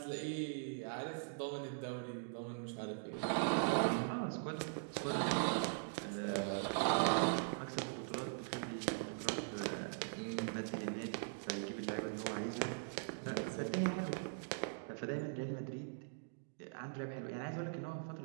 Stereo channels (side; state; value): left; silent; digital silence